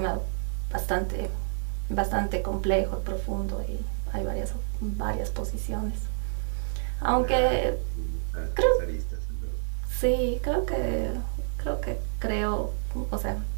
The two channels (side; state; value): left; silent; digital silence